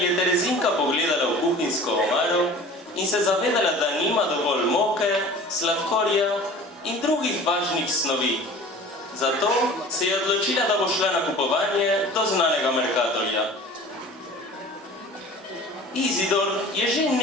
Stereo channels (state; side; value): normal; both; correlation 0.42